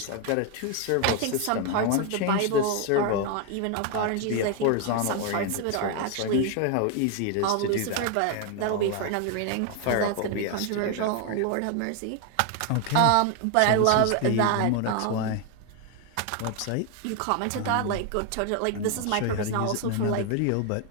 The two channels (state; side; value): different; both; correlation 0.01